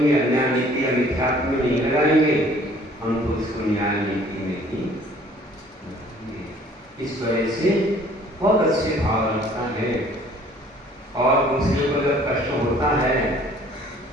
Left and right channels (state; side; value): normal; both; correlation 0.55